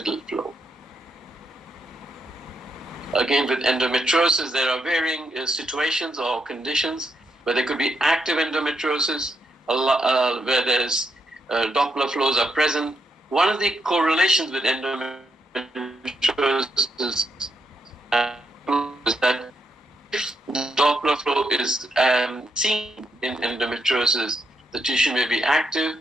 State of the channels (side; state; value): both; normal; correlation 0.80